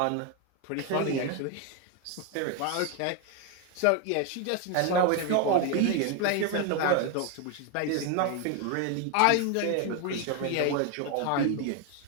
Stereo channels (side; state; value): both; different; correlation 0.01